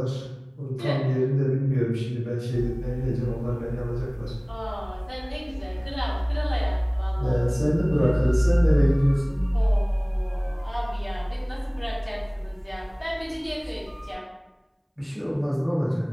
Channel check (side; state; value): both; identical; correlation 1.00